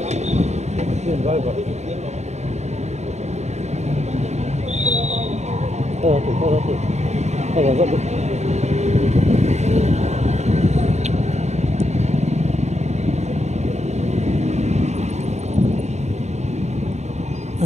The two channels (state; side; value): late; left; 0.32 ms